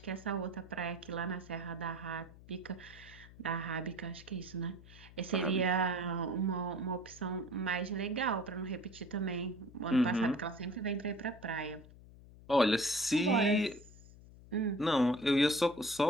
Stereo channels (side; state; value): left; noise; hum, 20 dB below the sound